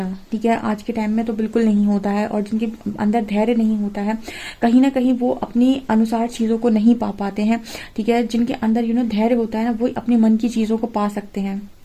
ठीक है, आज के टाइम में तो बिल्कुल नहीं होता है, और जिनके अंदर धैर्य नहीं होता है, कहीं ना कहीं वो अपनी अनुसार चीज़ों को नहीं पा पाते हैं। ठीक है, जिनके अंदर धैर्य होता है ना, वो अपने मन की चीज़ों को पा सकते हैं।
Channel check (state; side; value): identical; both; correlation 1.00